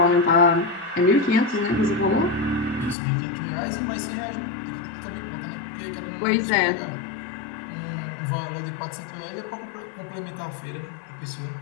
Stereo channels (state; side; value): drops out; right; at 3.0 s